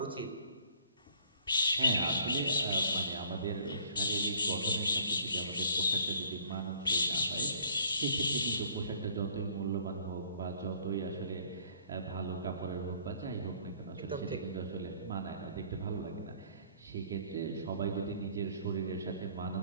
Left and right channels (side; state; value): both; inverted; correlation -0.56